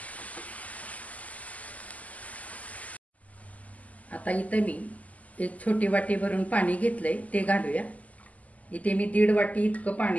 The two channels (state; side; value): late; right; 0.074 ms